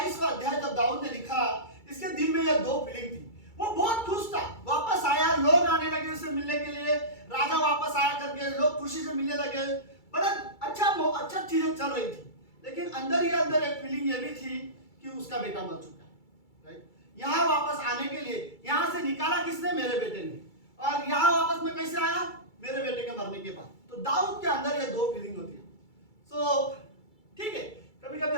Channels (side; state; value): right; late; 2.3 ms